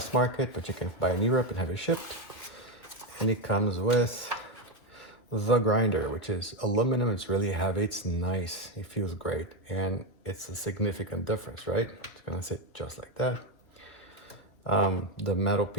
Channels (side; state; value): right; late; 2.5 ms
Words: market, but you can buy in Europe and have it shipped. And it comes with the grinder, which is aluminum. It's really heavy. It's nice. It feels great. And it's a significant difference, right? It's gonna sit just like that. The metal